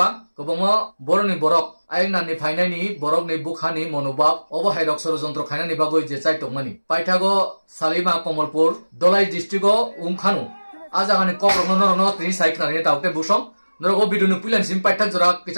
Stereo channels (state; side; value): inverted; both; correlation -1.00